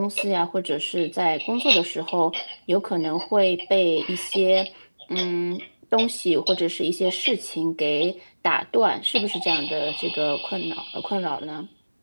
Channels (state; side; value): inverted; both; correlation -1.00